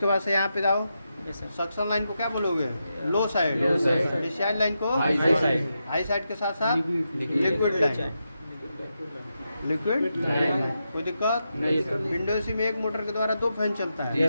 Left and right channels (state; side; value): inverted; both; correlation -0.86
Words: बाद से यहाँ पे जाओ, सक्शन लाइन को क्या बोलोगे? लो साइड। डिस्चार्ज लाइन को हाई साइड के साथ साथ लिक्विड लाइन। लिक्विड कोई दिक्कत नहीं। विंडो एसी में एक मोटर के द्वारा 2 फैन चलता है।